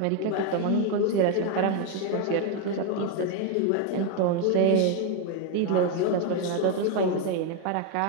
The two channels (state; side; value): different; both; correlation 0.01